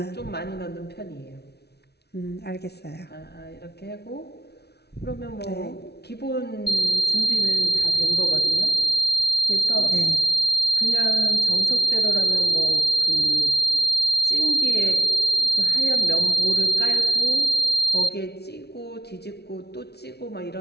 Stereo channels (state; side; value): late; right; 0.48 ms